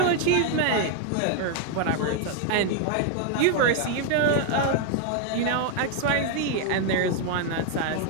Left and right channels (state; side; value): different; both; correlation 0.00